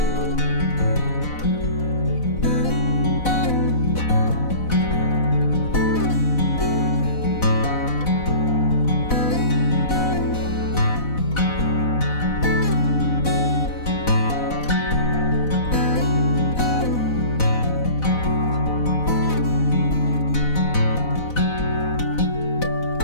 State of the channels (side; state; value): right; late; 4.0 ms